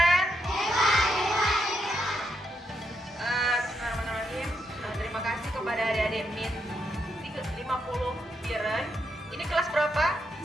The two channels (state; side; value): normal; both; correlation 0.81